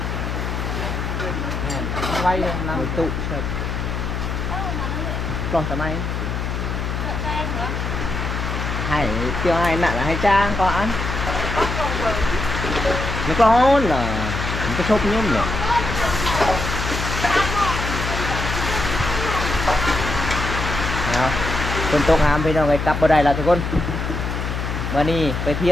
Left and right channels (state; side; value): noise; left; hum, 3 dB below the sound